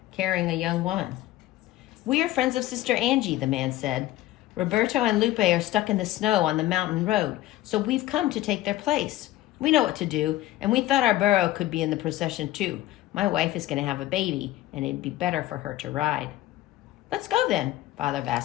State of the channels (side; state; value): right; quieter; 15.6 dB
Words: carrying a young woman. We are friends of Sister Angie, the man said. Roberto and Lupe are stuck in the snow on the mountain road, so we've come to take their place. We know what to do, and we thought our burro could be in the procession too. My wife is going to have a baby, and it'd be better for her to ride. Let's go then, Father